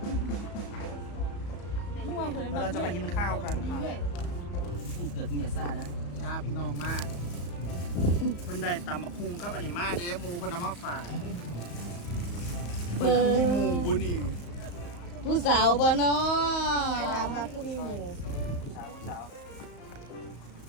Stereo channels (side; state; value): right; late; 34 ms